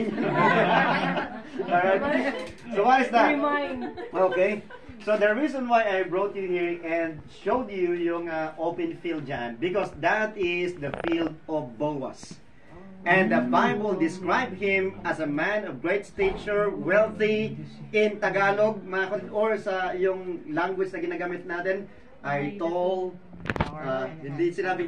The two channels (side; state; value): both; identical; correlation 1.00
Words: yan. Alright. So what is that? Okay. So the reason why I brought you here and showed you yung open field dyan, because that is the field of Boaz. And the Bible described him as a man of great stature, wealthy. In Tagalog, or sa yung language na ginagamit natin, ay tall, hindi